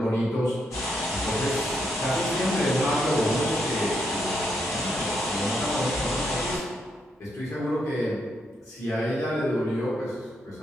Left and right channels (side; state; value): both; normal; correlation 0.78